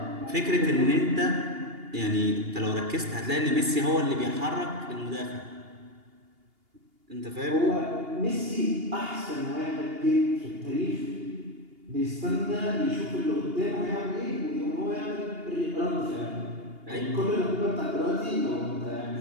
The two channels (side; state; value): left; late; 2.8 ms